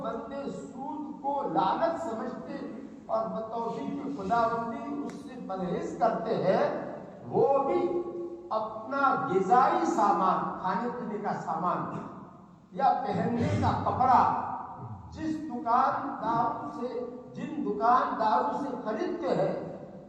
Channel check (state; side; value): identical; both; correlation 1.00